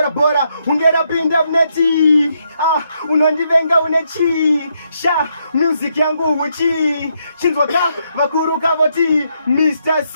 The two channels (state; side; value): inverted; both; correlation -0.77